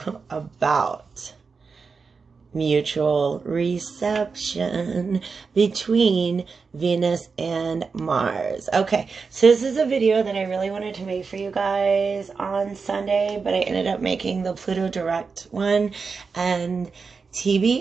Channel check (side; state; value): left; quieter; 5.0 dB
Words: about mutual reception between Venus and Mars. Okay, so this is a video that I really wanted to make for you guys on Sunday, but I ended up making the Pluto Direct one, and